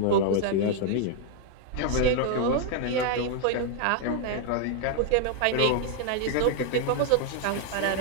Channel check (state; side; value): different; both; correlation 0.00